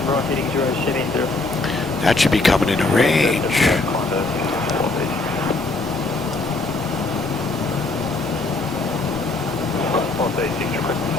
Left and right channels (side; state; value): right; quieter; 3.2 dB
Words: That should be coming into range.